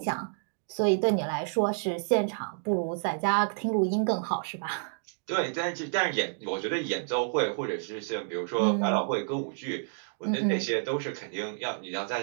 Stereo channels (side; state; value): left; silent; digital silence